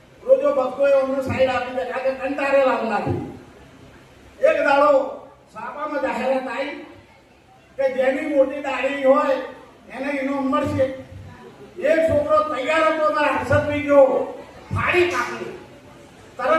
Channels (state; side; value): identical; both; correlation 1.00